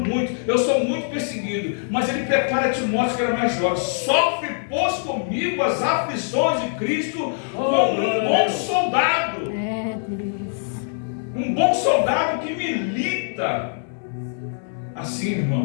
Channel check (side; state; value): right; silent; digital silence